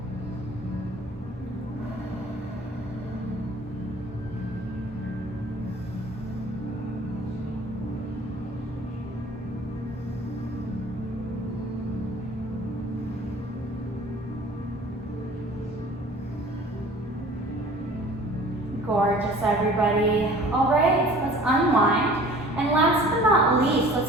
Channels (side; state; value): both; normal; correlation 0.47